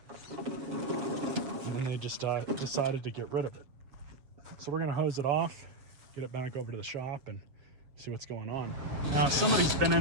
and they just decided to get rid of it. So we're gonna hose it off, get it back over to the shop and see what's going on. Now somebody's been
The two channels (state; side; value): late; left; 7.5 ms